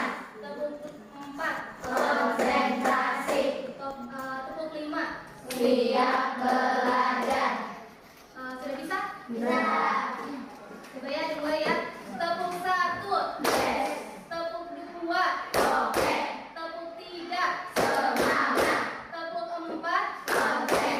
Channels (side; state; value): both; identical; correlation 1.00